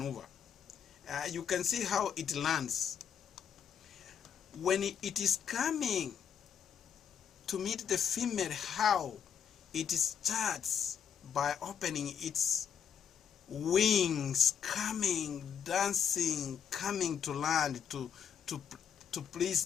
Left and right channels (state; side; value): quieter; right; 7.9 dB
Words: You can see how it lands. When it is coming to meet the female, how it starts by opening its wings, coming, dancing, coming to land to please